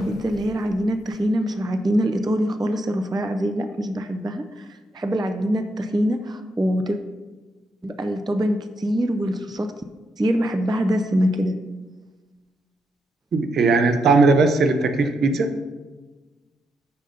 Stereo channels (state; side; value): normal; both; correlation 0.81